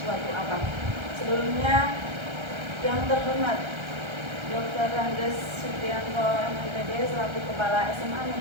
apa. Sebelumnya, yang terhormat Dr. Randes Supriyanto MPD selaku Kepala SMA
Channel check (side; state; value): left; late; 1.3 ms